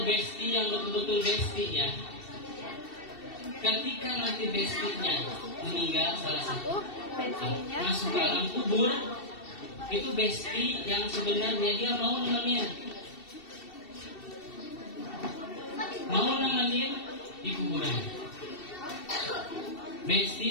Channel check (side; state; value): right; late; 2.7 ms